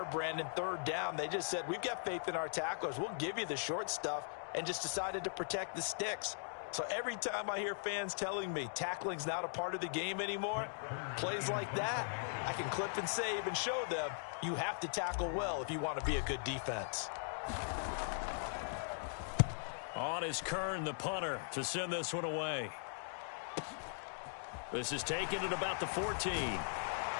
Brandon? 3rd down, they just said, we've got faith in our tacklers. We'll give you the short stuff, and just decided to protect the sticks. So every time I hear fans telling me tackling's not a part of the game anymore, plays like that, I can clip and save and show them you have to tackle well if you want to be a good defense. On is Kern, the punter, to send this one away. This is taken at about the 14.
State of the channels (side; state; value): right; silent; digital silence